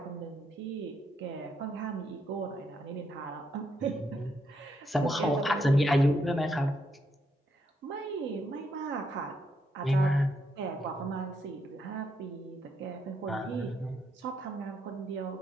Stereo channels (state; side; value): normal; both; correlation 0.77